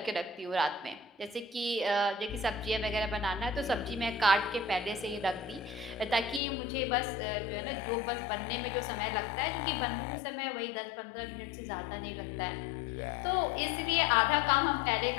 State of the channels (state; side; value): drops out; right; at 6.4 s